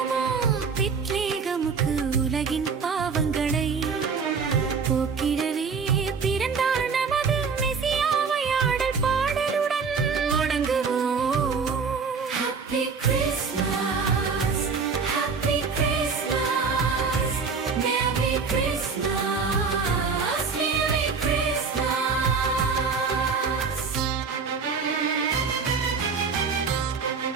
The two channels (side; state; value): left; quieter; 5.3 dB